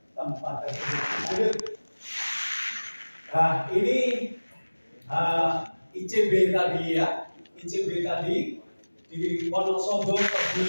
tempat tersebut. Nah, ini ICB tadi ya, ICB tadi di Wonosobo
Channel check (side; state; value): both; inverted; correlation -1.00